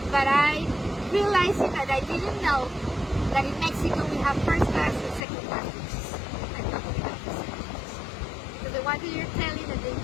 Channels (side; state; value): right; drops out; at 5.2 s